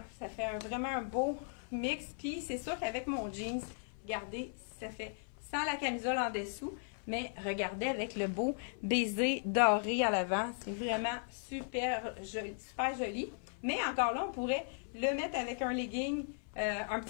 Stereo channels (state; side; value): silent; right; 53 dB below the other